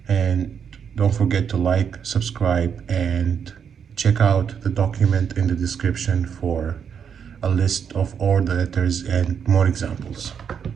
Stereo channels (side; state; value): left; quieter; 7.4 dB